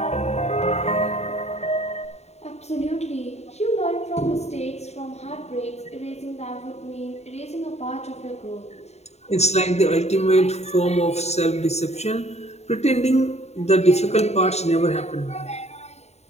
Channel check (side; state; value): right; late; 0.32 ms